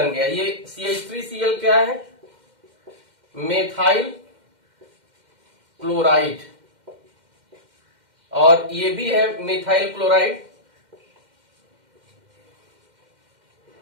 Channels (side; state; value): left; late; 2.1 ms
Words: गया। ये CH3Cl क्या है? मेथाइल क्लोराइड, और ये भी है मिथाइल क्लोराइड।